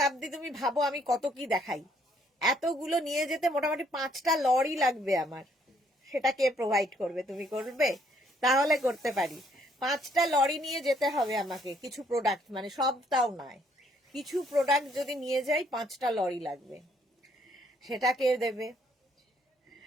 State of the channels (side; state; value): both; normal; correlation 0.67